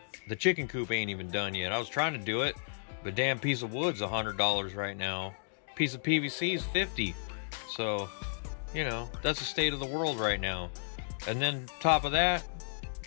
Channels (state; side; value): silent; right; digital silence